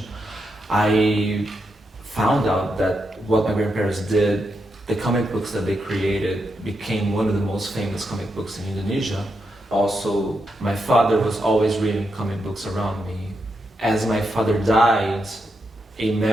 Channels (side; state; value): both; normal; correlation 0.84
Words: I found out that what my grandparents did, the comic books that they created became one of the most famous comic books in Indonesia. Also, my father was always reading comic books around me. As my father died, a